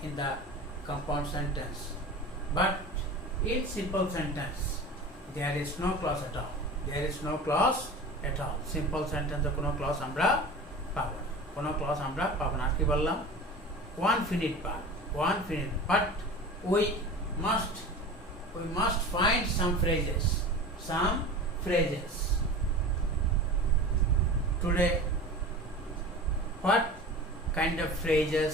in the compound sentence. But in simple sentence, there is no clause at all. There is no clause at all. Simple sentence কোনো clause আমরা পাবো না, কোনো clause আমরা পাবো না। কি বললাম? One finite part, but we must find some phrases. Today, what kind of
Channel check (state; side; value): normal; both; correlation 0.35